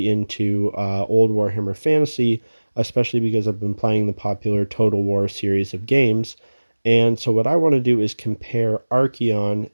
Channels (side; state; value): both; inverted; correlation -1.00